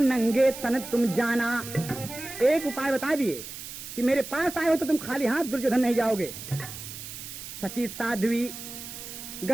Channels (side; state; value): right; noise; hiss, 11 dB below the sound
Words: नंगे तन तुम जाना। एक उपाय बता दिए कि मेरे पास आए हो तो तुम खाली हाथ दुर्योधन नहीं जाओगे। सती साध्वी